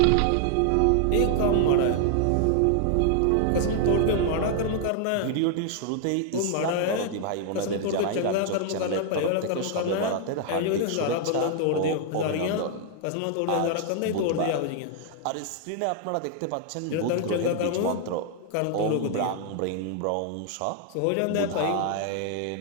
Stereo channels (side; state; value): both; different; correlation 0.00